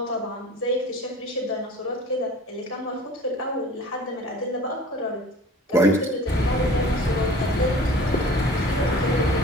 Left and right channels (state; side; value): normal; both; correlation 0.44